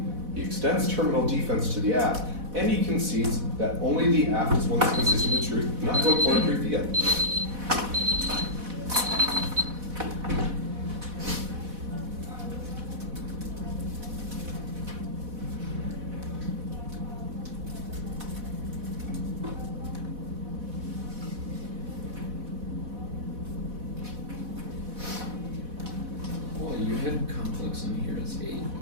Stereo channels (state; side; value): late; left; 4.1 ms